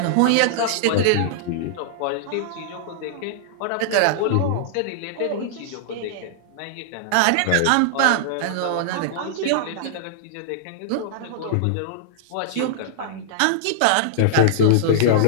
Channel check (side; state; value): both; different; correlation -0.01